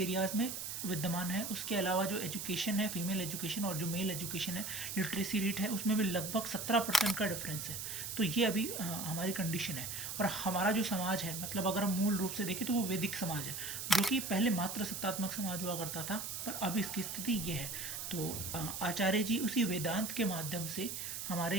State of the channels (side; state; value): right; noise; hiss, 5 dB below the sound